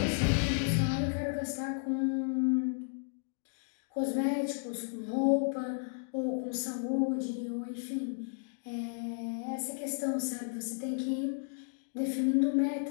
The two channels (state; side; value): silent; right; digital silence